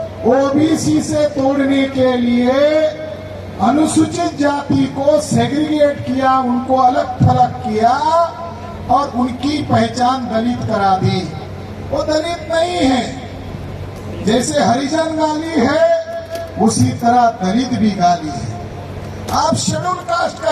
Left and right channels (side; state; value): both; identical; correlation 1.00